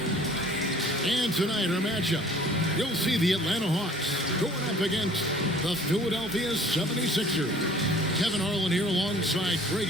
And tonight, our matchup, you'll see the Atlanta Hawks going up against the Philadelphia 76ers. Kevin Harlan here alongside Greg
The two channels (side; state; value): both; normal; correlation 0.52